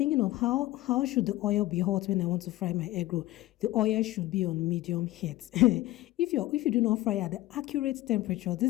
of how should the oil be hot when I want to fry my egg roll. The oil should be on medium heat. If you do not fry at the accurate temperature,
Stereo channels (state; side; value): quieter; right; 17.0 dB